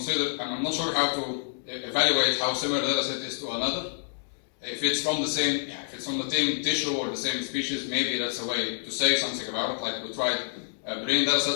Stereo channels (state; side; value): silent; right; digital silence